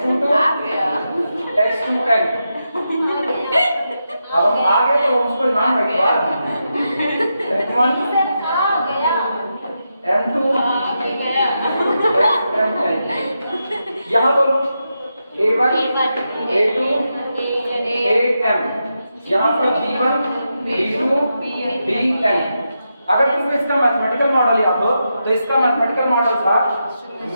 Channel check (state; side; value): inverted; both; correlation -0.86